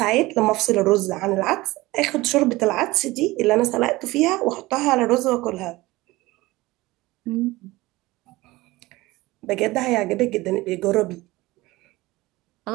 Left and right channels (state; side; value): quieter; left; 19.8 dB